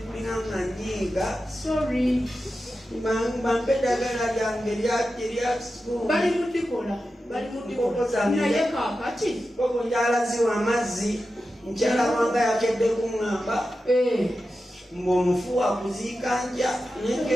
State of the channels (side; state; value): both; normal; correlation 0.92